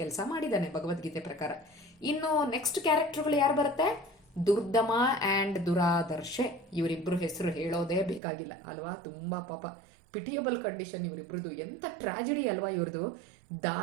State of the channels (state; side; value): drops out; left; at 8.2 s